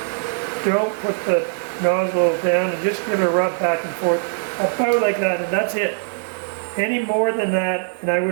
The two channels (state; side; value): silent; left; digital silence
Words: Don't put the nozzle down, and just give it a rub back and forth about like that, and that's it. Any more than that and I